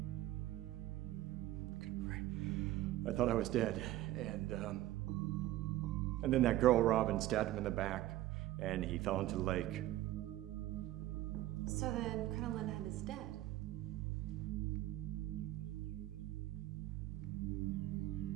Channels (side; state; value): left; quieter; 15.2 dB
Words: I thought I was dead, and then that girl Robin stabbed him in the back, and he fell into the lake. So then Crinoline Head is dead.